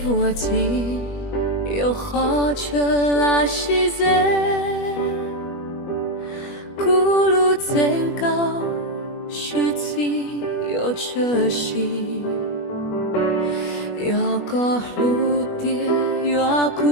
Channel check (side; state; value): right; late; 21 ms